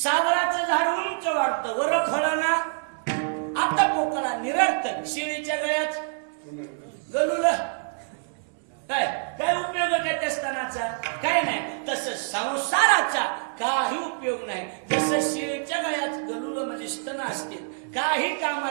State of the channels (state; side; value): silent; left; digital silence